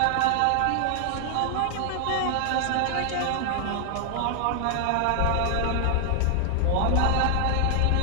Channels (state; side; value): different; both; correlation 0.00